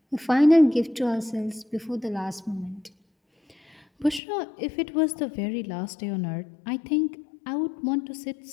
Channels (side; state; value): right; drops out; at 4.2 s